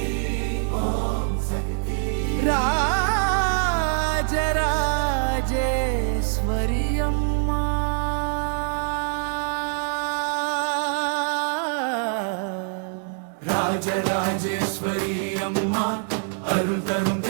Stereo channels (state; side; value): silent; left; 60 dB below the other